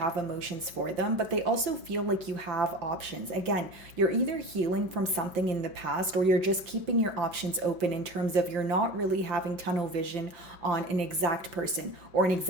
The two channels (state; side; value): late; left; 5.8 ms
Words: emotions for them, but they also feel like you have options. Again, you're either healing from something in the past, or you're just keeping your options open in terms of you're not really having tunnel vision on an exact person or an